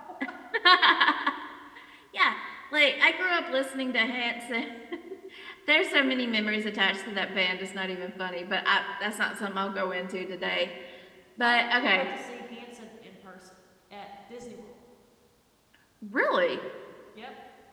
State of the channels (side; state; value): both; identical; correlation 1.00